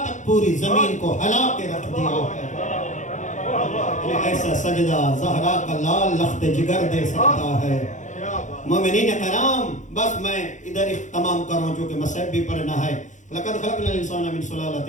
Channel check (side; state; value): right; late; 0.35 ms